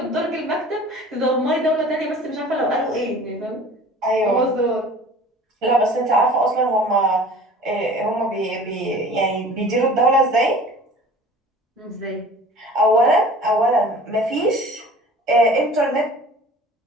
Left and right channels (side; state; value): both; normal; correlation 0.44